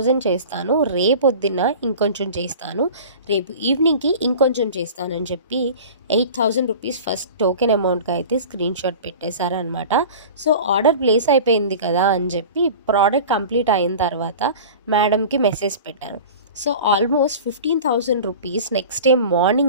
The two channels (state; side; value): inverted; both; correlation -0.37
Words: చేస్తాను. రేపొద్దున్న ఇంకొంచెం చేస్తాను. రేపు ఈవినింగ్‌కి ఇంకొంచెం చేస్తాను" అని చెప్పి 8,000 రూపీస్ ఫస్ట్ టోకెన్ అమౌంట్‌గా అయితే స్క్రీన్‌షాట్ పెట్టేశారనమాట. సో, ఆర్డర్ ప్లేస్ అయిపోయింది కదా అని చెప్పి ప్రోడక్ట్ కంప్లీట్ అయిన తర్వాత మేడంకి మెసేజ్ పెట్టాను. So, almost 15,000 rupees next day